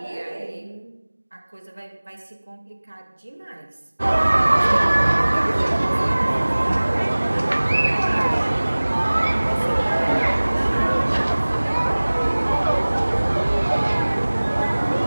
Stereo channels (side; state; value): both; inverted; correlation -1.00